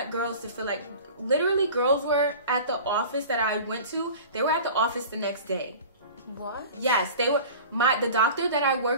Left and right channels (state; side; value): inverted; both; correlation -0.39